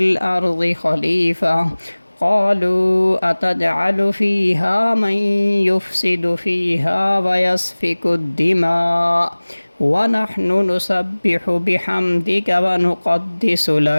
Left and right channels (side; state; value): both; inverted; correlation -1.00